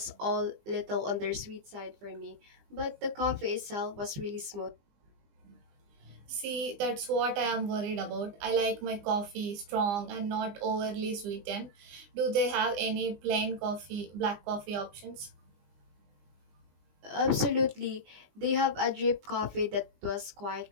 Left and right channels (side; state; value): left; late; 20 ms